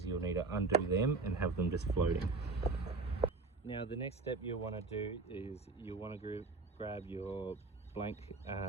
you'll need to undo them and have them just floating. Now the next step you'll want to do is you'll want to grab your blank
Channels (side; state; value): left; quieter; 3.7 dB